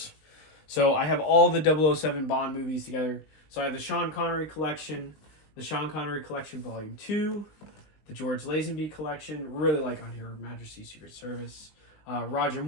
So I have all the 007 Bond movies together. So I have the Sean Connery collection, the Sean Connery Collection Volume 2, the George Lazenby Collection, really like on here, Majesty's Secret Service, Roger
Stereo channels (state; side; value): late; right; 19 ms